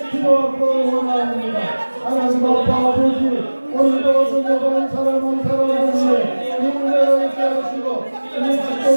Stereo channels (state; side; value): inverted; both; correlation -1.00